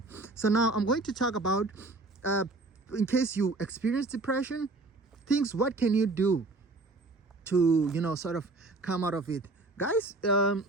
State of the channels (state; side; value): quieter; left; 3.3 dB